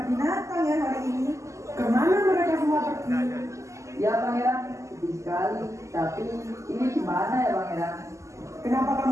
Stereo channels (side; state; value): left; late; 0.15 ms